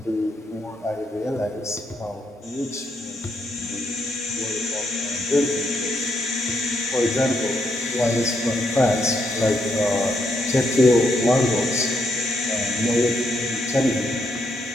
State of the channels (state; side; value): normal; both; correlation 0.77